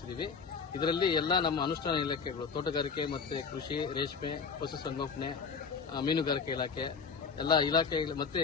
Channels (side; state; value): right; quieter; 5.6 dB